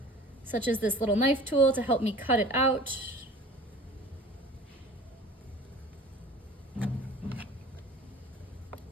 such as this little knife tool to help me cut it out.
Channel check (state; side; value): normal; both; correlation 0.43